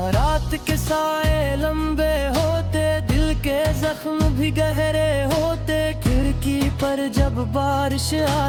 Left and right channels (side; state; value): both; identical; correlation 1.00